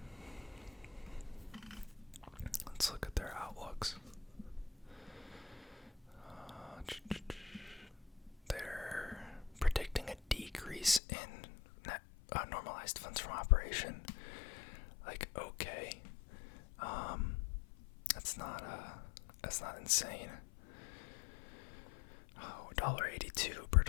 Let's look at their outlooks. They're predicting a decrease in net normalized funds from operation. Okay, that's not insane. $1.82 per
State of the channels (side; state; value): right; drops out; at 11.0 s